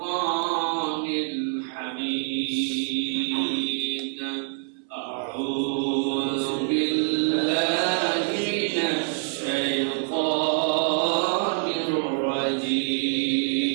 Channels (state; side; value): silent; left; digital silence